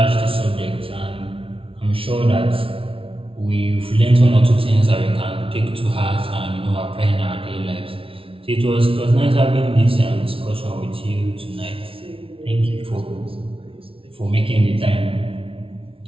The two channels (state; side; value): late; left; 0.26 ms